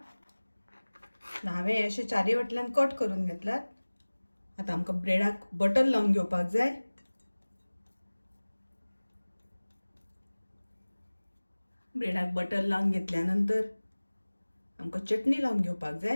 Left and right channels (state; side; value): inverted; both; correlation -1.00